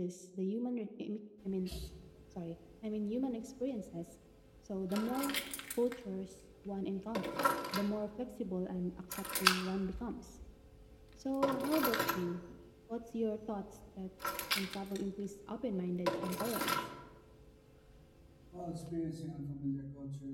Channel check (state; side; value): identical; both; correlation 1.00